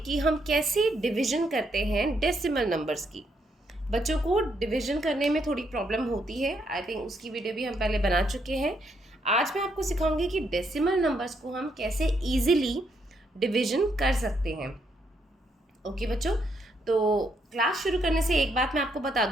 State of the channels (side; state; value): both; normal; correlation 0.75